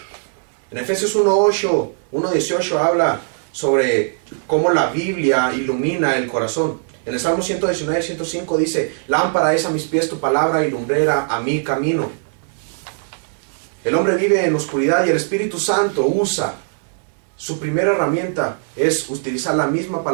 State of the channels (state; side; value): silent; left; digital silence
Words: En Efesios 1:18 habla sobre cómo la Biblia ilumina el corazón. En el Salmo 119:105 dice: lámpara es a mis pies tu palabra y lumbrera a mi camino. El hombre vive en oscuridad y el Espíritu Santo usa, su primera herramienta es utilizar la misma